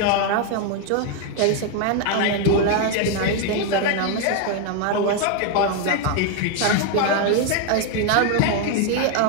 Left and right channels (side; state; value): both; different; correlation 0.01